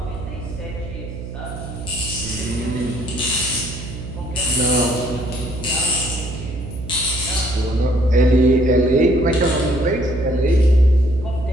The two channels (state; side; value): noise; right; hum, 9 dB below the sound